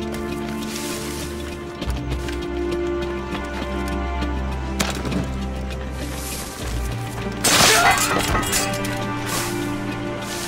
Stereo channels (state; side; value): identical; both; correlation 1.00